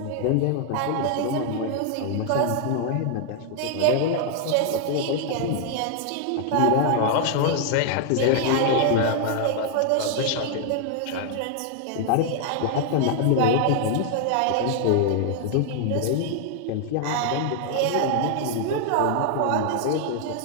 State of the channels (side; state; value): both; different; correlation 0.00